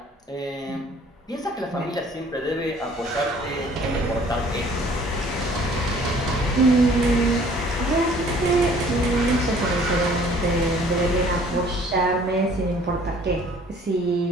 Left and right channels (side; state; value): both; normal; correlation 0.55